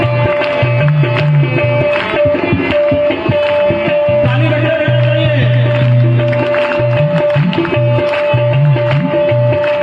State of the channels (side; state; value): both; identical; correlation 1.00